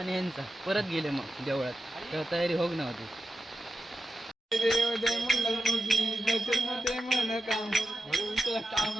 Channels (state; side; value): normal; both; correlation 0.90